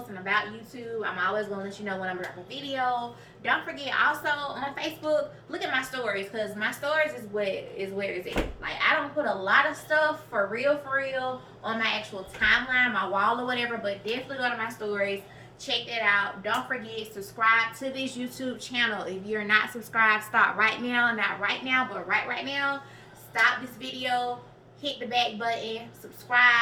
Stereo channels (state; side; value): identical; both; correlation 1.00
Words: about YouTube. I'm always going to let you know when I'm dropping a video. Don't forget also on Facebook, look at my stories, because my stories is where it's at. Like, I don't put a lot of stuff for real on my actual timeline, my wall or whatever, but definitely go to my stories. check that out. Don't forget, subscribe to this YouTube channel. If you're not subscribed, stop right now. Not right now, but right now. Stop this video. Hit the back button,